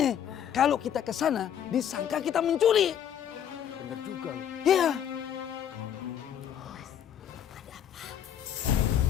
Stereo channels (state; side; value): quieter; right; 9.4 dB